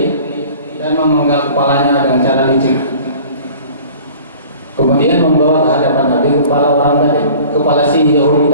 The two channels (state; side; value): inverted; both; correlation -0.46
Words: dan memenggal kepalanya dengan cara licik. Kemudian membawa ke hadapan Nabi kepala orang tadi, kepala si Yahudi